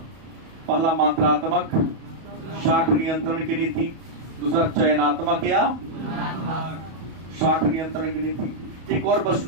पहला मात्रात्मक शाख नियंत्रण की नीति, दूसरा चयनात्मक या शाख नियंत्रण की नीति। एक और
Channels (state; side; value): late; left; 31 ms